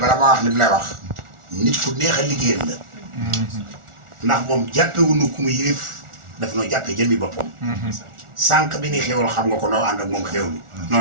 ma wax li mu lay wax nit ku neex a liggéeyal la ndax moom jàppewuñu ku mu yilif daf noo jàppee jëmmi boppam sànq bi ni xéwal xam nga ko noo ànd ak moom xéwlu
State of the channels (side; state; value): left; late; 1.4 ms